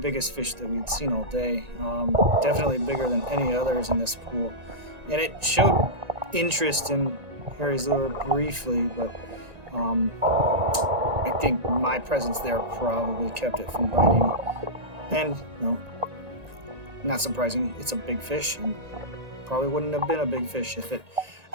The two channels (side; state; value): left; late; 1.9 ms